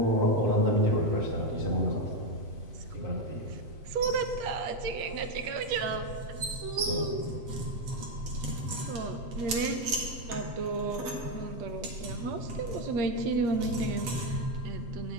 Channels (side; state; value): left; late; 8.2 ms